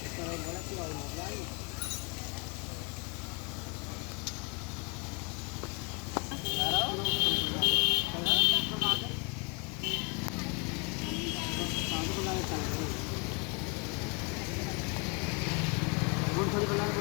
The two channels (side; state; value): right; quieter; 31.6 dB